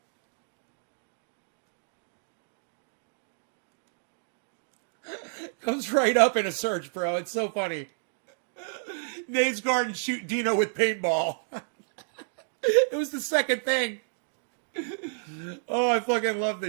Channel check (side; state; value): left; silent; digital silence